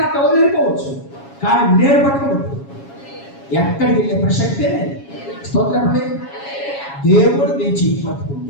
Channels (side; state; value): right; late; 7.2 ms